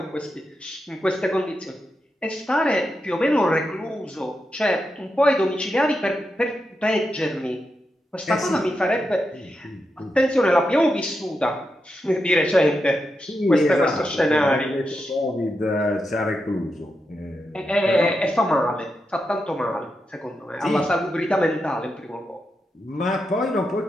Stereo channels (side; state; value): both; normal; correlation 0.86